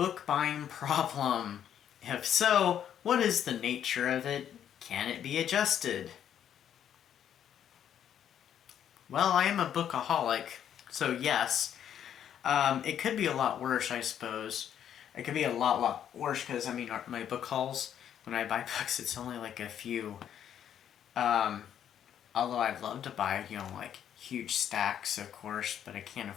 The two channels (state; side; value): quieter; right; 9.6 dB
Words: buying problem? If so, what is the nature of it? Can it be adjusted? Well, I am a bookaholic, so yes. It could be a lot worse, I suppose. It could be a lot worse because, my book hauls, when I buy books, it's only like a few. Although I'd love to buy, like huge stacks, of course, but I can't